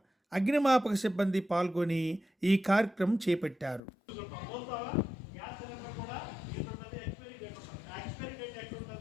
అగ్నిమాపక సిబ్బంది పాల్గొని ఈ కార్యక్రమం చేపట్టారు.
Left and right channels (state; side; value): drops out; right; at 3.8 s